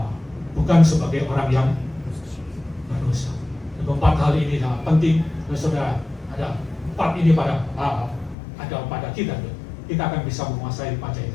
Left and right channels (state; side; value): drops out; right; at 8.3 s